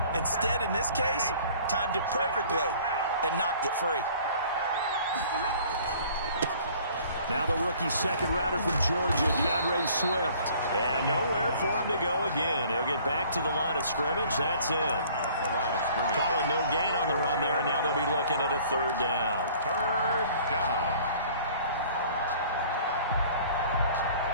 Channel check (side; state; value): both; inverted; correlation -0.53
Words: Instead, in this case, timed it perfectly and knocked it free. Now the rookie second rounder from Georgia, DeAndre Swift. And nowhere for him to go again. He'll get back to the line of scrimmage. That's it. Calling no gain on the run there, and now they'll be looking at a third down. Third down.